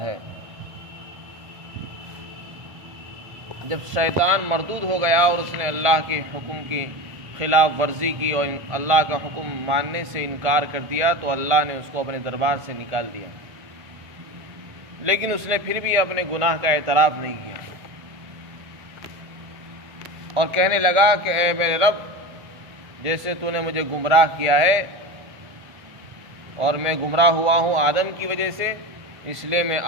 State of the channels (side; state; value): left; late; 1.5 ms